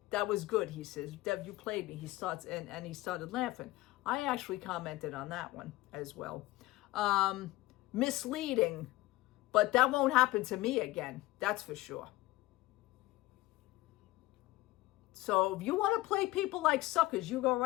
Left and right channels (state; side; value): quieter; right; 18.5 dB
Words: That was good, he says. Dev, you played me. He starts, and he started laughing. I actually commented on that one as well. Misleading, but that won't happen to me again. That's for sure. So if you want to play people like suckers, you go